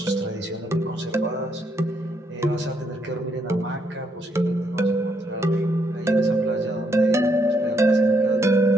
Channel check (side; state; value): both; normal; correlation 0.75